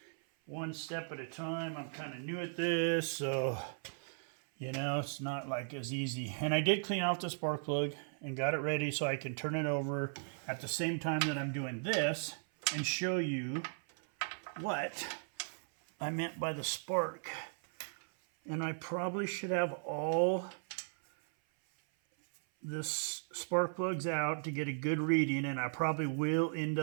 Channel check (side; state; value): left; silent; 53 dB below the other